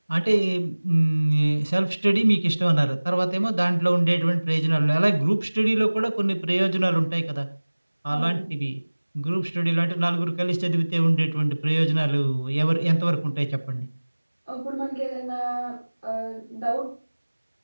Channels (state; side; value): inverted; both; correlation -1.00